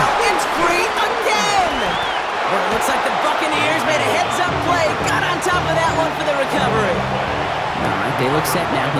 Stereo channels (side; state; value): both; identical; correlation 1.00